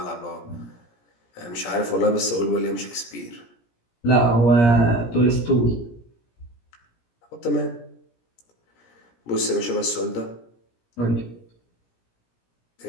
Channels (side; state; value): right; late; 17 ms